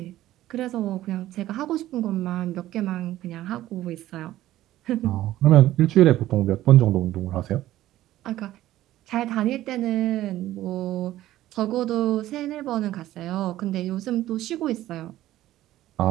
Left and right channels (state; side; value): quieter; left; 14.5 dB